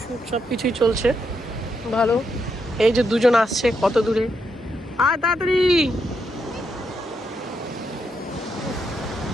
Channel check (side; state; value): both; normal; correlation 0.80